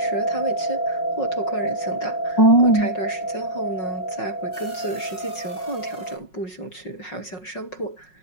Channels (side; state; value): right; late; 5.5 ms